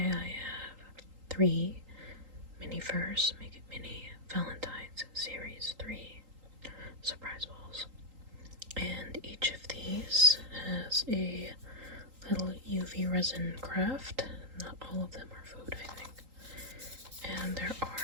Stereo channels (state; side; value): late; left; 3.8 ms